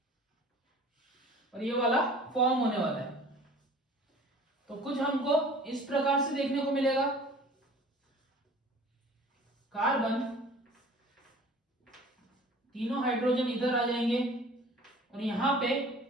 और ये वाला फॉर्म होने वाला है। तो कुछ हमको इस प्रकार से देखने को मिलेगा, कार्बन, तीनों हाइड्रोजन इधर आ जाएंगे और यहां पे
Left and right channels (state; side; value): normal; both; correlation 0.47